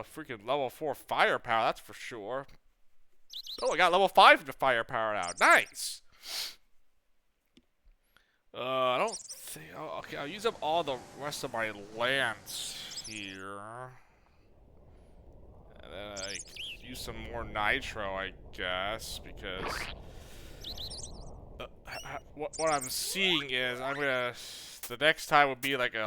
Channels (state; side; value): identical; both; correlation 1.00